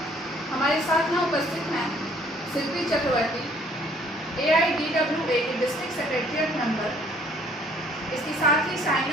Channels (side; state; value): both; normal; correlation 0.60